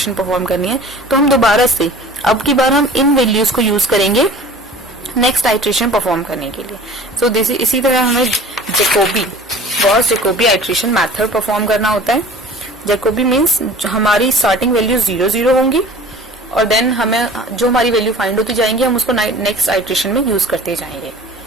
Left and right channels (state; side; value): normal; both; correlation 0.43